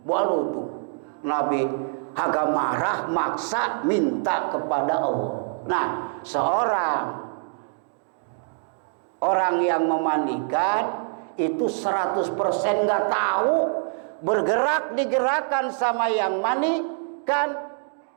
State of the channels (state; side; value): silent; left; 62 dB below the other